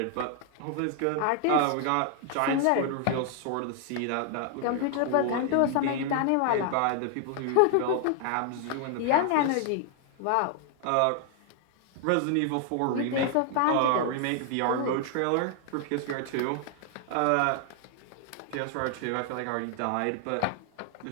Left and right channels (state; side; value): different; both; correlation 0.00